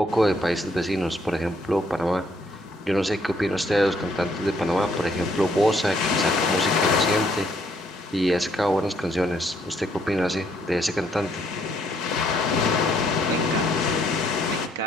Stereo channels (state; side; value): normal; both; correlation 0.69